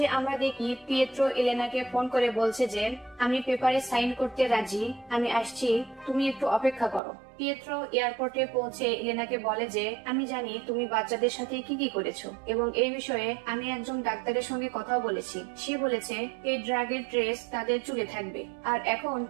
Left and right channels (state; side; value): drops out; left; at 7.0 s